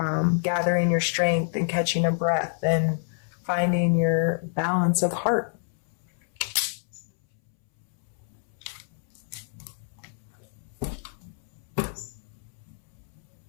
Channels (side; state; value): right; silent; 60 dB below the other